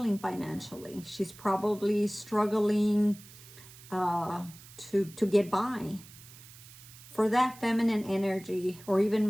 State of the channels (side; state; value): right; noise; hiss, 20 dB below the sound